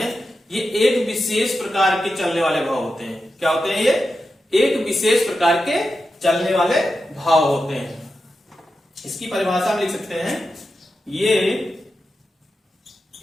ये एक विशेष प्रकार के चलने वाले भाव होते हैं। क्या होते हैं, ये एक विशेष प्रकार के चलने वाले भाव होते हैं। इसकी परिभाषा में लिख सकते हैं, ये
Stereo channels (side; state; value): both; normal; correlation 0.90